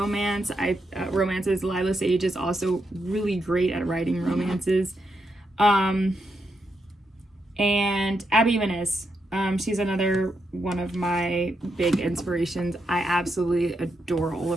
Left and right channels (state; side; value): normal; both; correlation 0.82